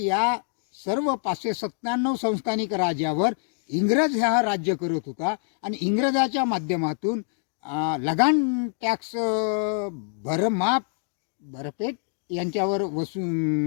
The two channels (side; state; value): right; silent; 61 dB below the other